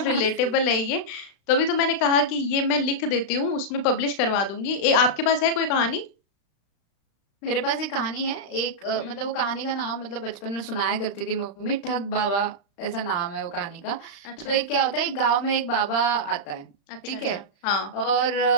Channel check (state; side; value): late; right; 36 ms